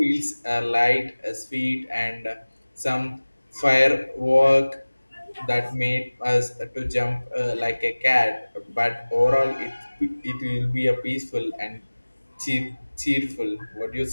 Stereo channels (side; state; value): both; inverted; correlation -1.00